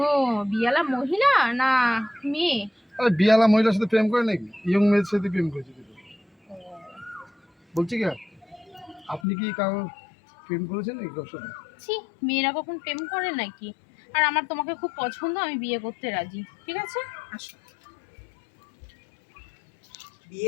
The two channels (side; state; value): right; drops out; at 9.2 s